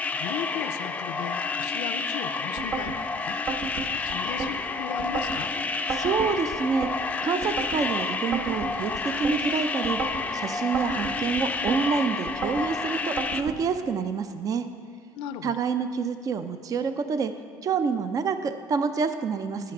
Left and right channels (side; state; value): both; normal; correlation 0.55